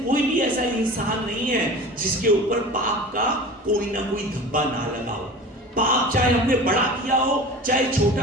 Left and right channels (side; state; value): both; normal; correlation 0.36